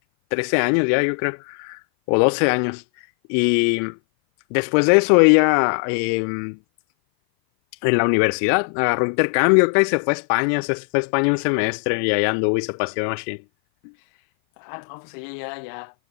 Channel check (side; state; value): right; silent; 57 dB below the other